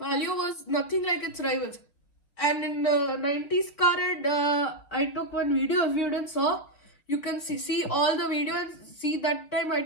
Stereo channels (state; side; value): late; right; 4.2 ms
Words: was nothing like its rivals, and in 90s car and I took one video. If you didn't saw, you can see all the video and see that time I